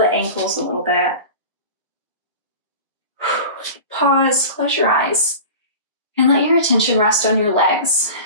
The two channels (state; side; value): inverted; both; correlation -0.35